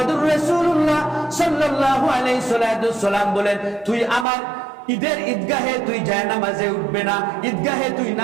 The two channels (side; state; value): left; drops out; at 4.2 s